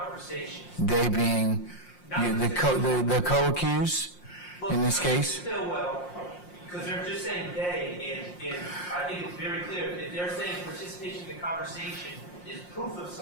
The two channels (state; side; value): late; right; 5.6 ms